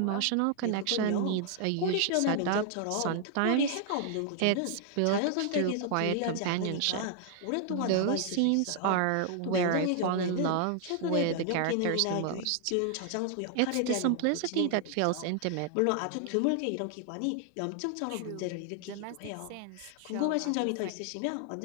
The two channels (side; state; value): both; different; correlation 0.00